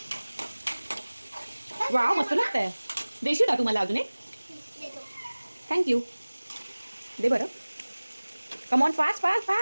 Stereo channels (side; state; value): both; inverted; correlation -1.00